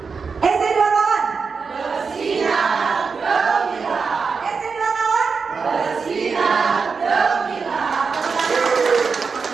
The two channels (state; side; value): quieter; left; 5.2 dB